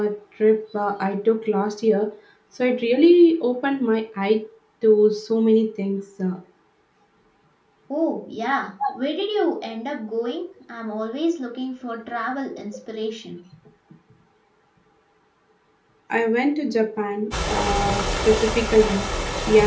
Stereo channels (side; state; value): both; identical; correlation 1.00